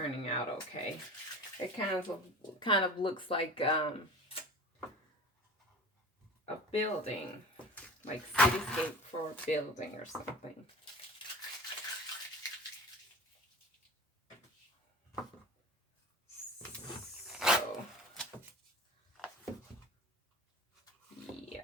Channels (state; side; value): normal; both; correlation 0.37